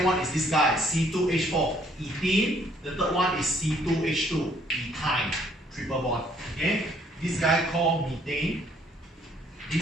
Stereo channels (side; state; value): both; normal; correlation 0.64